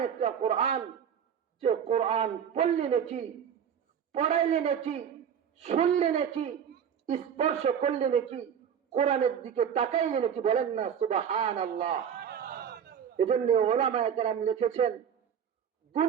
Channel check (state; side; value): quieter; left; 8.2 dB